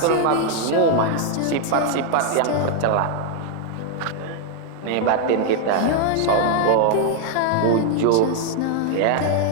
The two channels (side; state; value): both; different; correlation 0.00